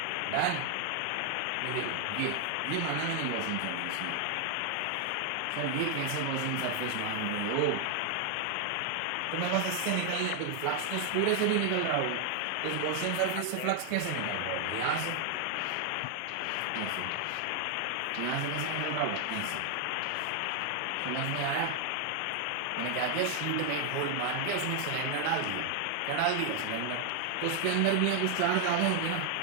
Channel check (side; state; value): both; different; correlation 0.00